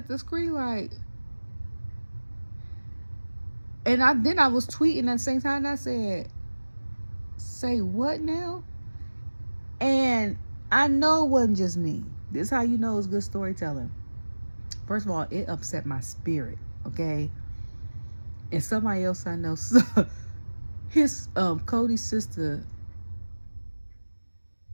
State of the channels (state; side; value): inverted; both; correlation -1.00